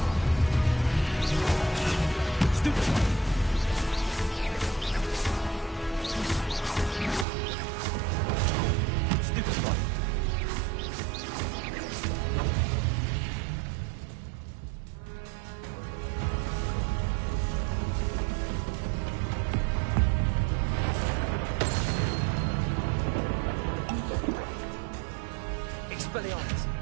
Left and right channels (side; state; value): left; drops out; at 7.2 s